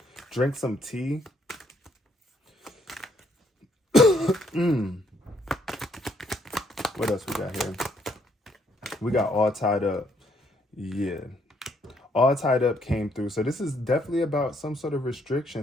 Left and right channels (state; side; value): normal; both; correlation 0.70